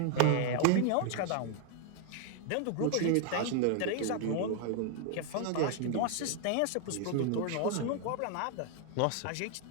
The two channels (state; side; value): different; both; correlation 0.00